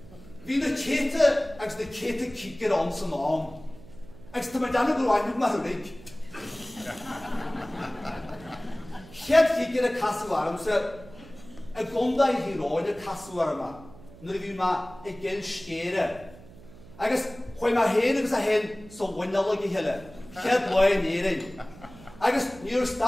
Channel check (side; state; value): right; noise; hum, 20 dB below the sound